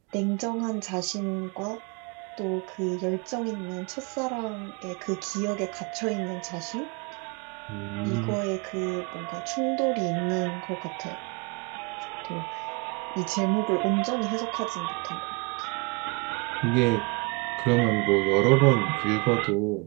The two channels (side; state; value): left; quieter; 30.7 dB